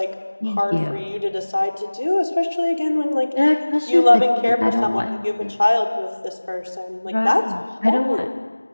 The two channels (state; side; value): inverted; both; correlation -1.00